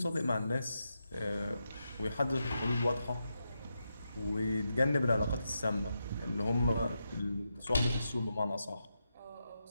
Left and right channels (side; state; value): both; inverted; correlation -0.86